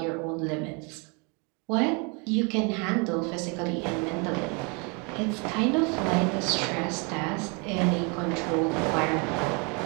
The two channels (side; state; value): left; quieter; 32.4 dB